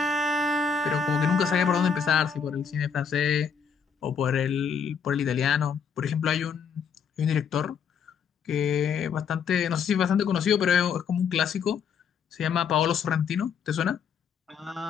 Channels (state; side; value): quieter; right; 6.6 dB